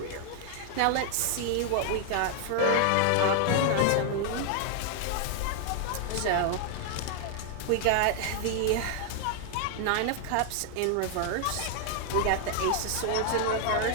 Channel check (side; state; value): both; different; correlation 0.00